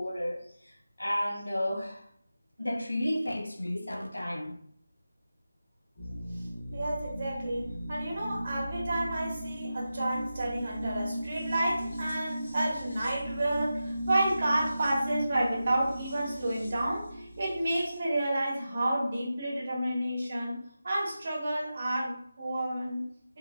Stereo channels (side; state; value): both; inverted; correlation -0.92